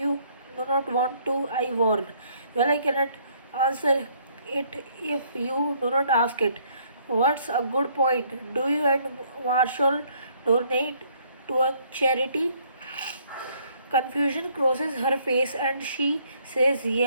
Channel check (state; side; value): inverted; both; correlation -0.65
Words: do not want to, I warned. Well, I cannot answer it if you do not ask it. What's a good point? Do you and Marshall donate to a charity? Confusion crosses her face and she says,